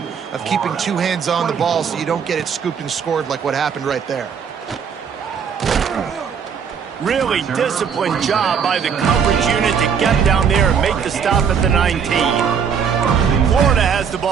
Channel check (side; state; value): left; quieter; 7.0 dB